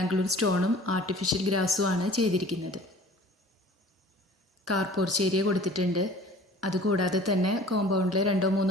സ്റ്റോണും ആർട്ടിഫിഷ്യൽ ഗ്രാസുമാണ് ചെയ്തിരിക്കുന്നത്. കാർ പോർച്ച് ഏരിയ കൊടുത്തിട്ടുണ്ട്. അതുകൂടാതെ തന്നെ കോമ്പൗണ്ടിൽ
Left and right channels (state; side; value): normal; both; correlation 0.47